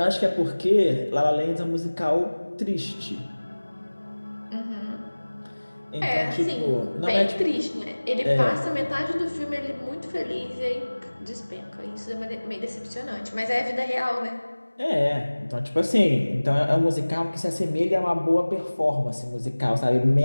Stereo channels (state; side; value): inverted; both; correlation -1.00